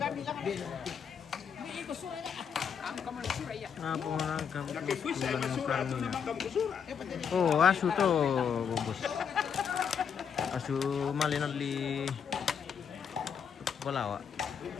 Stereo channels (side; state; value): right; quieter; 7.2 dB